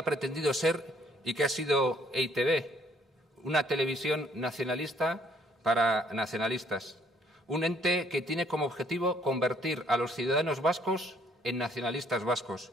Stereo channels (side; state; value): both; normal; correlation 0.64